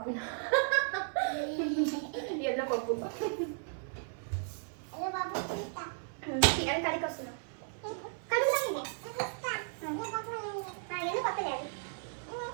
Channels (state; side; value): silent; left; 54 dB below the other